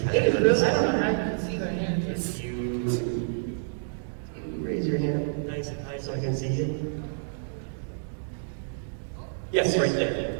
it is really, I don't know how you can see their hands. If you raise your hand nice and high so I can see it. Yes, right there.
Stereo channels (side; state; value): left; silent; digital silence